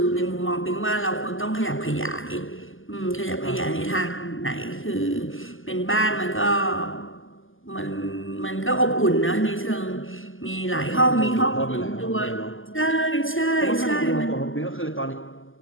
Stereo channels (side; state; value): right; late; 0.58 ms